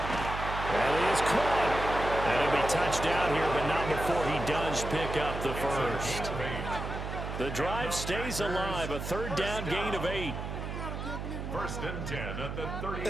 And he is caught. And he'll be touched down here, but not before he does pick up the 1st. The drive stays alive. A 3rd down gain of 8. 1st and 10 at the 36-yard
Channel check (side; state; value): right; noise; hum, 6 dB below the sound